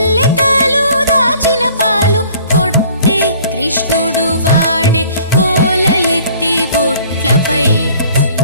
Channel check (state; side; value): inverted; both; correlation -0.53